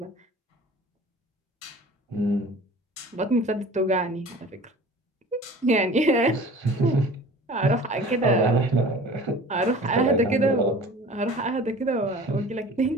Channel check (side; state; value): both; normal; correlation 0.43